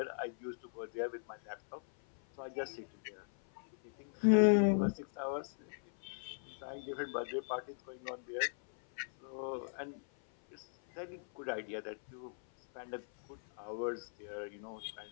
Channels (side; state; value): right; silent; 52 dB below the other